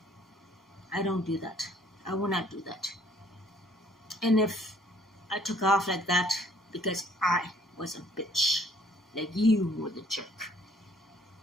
I don't do that. I will not do that. And if I took off like that because I was a bitch, like you were the jerk,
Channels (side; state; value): both; normal; correlation 0.60